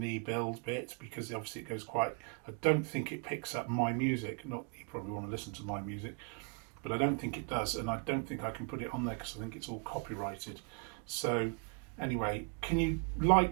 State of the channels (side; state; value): left; quieter; 37.5 dB